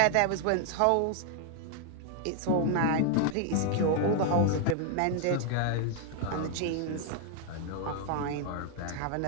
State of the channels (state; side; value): different; both; correlation 0.00